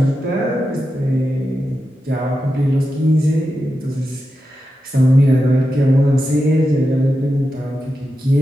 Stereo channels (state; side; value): normal; both; correlation 0.90